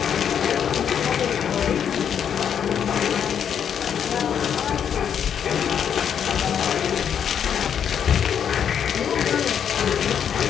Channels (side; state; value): right; quieter; 8.3 dB